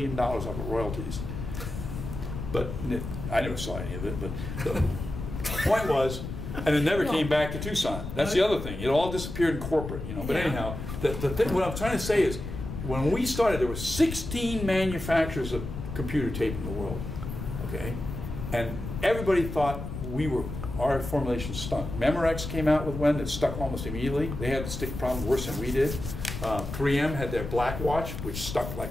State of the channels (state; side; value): noise; left; rumble, 7 dB below the sound